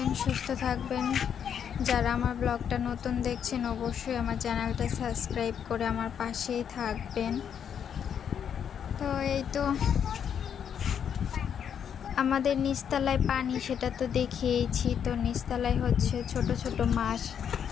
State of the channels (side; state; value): right; quieter; 8.2 dB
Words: সুস্থ থাকবেন। যারা আমার ব্লগটা নতুন দেখছেন অবশ্যই আমার চ্যানেলটা সাবস্ক্রাইব করে আমার পাশেই থাকবেন। তো এই তো আমাদের নিচতলায় পানি, সেটা তো দেখিয়েছি। তো নিচতলায় হচ্ছে ছোট ছোট মাছ